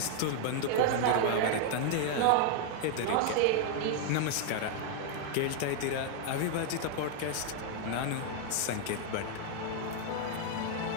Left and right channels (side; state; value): both; different; correlation 0.00